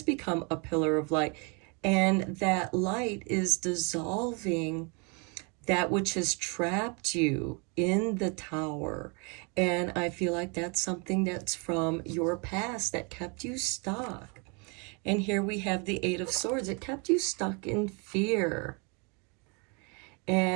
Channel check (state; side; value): quieter; left; 32.9 dB